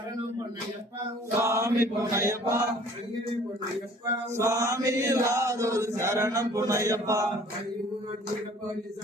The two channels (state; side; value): normal; both; correlation 0.52